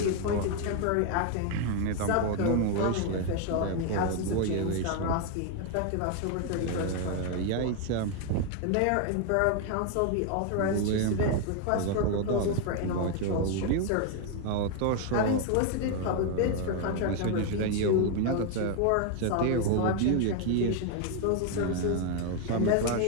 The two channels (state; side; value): different; both; correlation 0.01